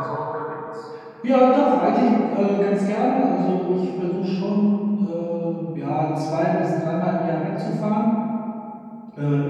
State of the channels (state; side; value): identical; both; correlation 1.00